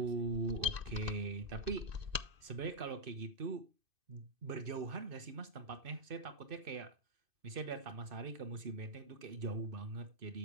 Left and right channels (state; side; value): late; left; 2.5 ms